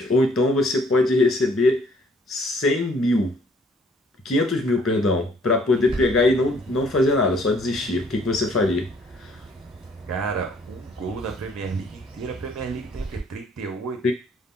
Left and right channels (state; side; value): normal; both; correlation 0.61